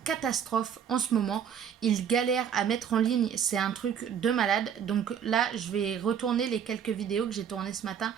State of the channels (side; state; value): left; quieter; 8.2 dB